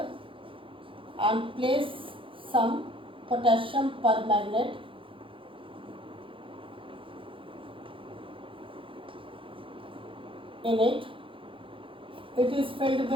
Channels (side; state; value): left; late; 0.25 ms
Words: and place some potassium permanganate in it, it is filled